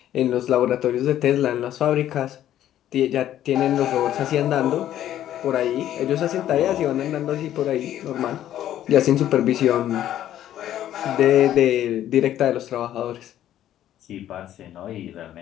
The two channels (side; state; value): right; quieter; 11.9 dB